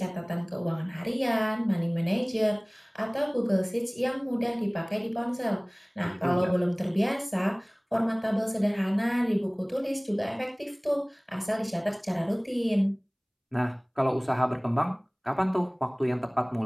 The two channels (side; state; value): both; identical; correlation 1.00